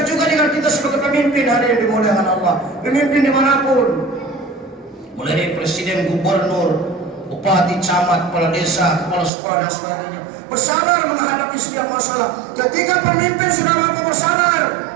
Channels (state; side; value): drops out; left; at 9.3 s